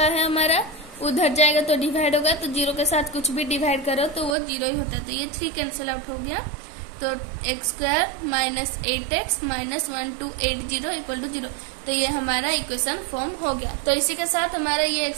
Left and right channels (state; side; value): drops out; left; at 4.4 s